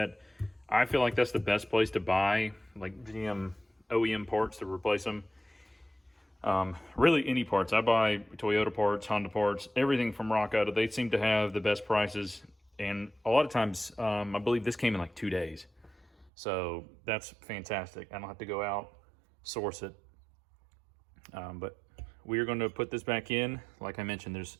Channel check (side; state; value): left; drops out; at 16.3 s